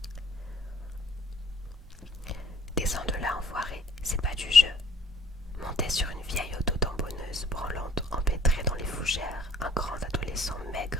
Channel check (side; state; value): both; normal; correlation 0.54